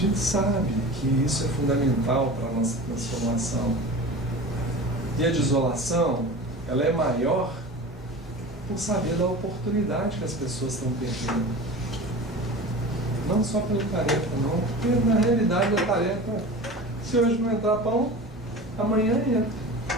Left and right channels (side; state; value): both; normal; correlation 0.34